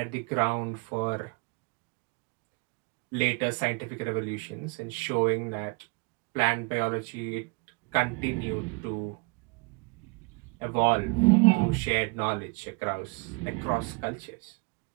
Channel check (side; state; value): left; quieter; 29.6 dB